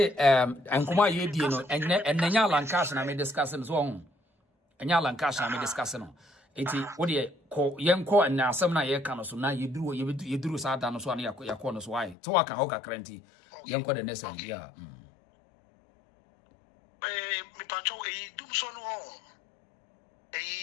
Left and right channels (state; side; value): drops out; right; at 12.2 s